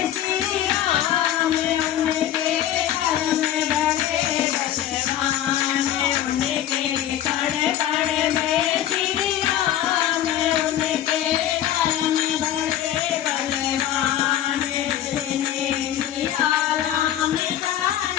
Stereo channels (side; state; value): right; quieter; 11.8 dB